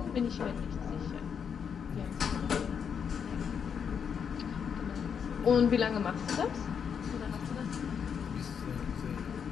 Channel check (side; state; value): right; quieter; 7.1 dB